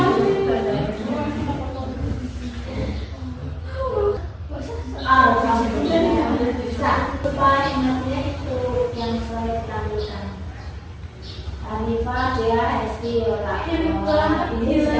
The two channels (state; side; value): identical; both; correlation 1.00